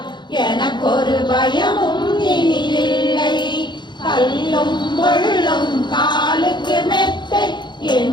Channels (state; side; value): late; right; 0.22 ms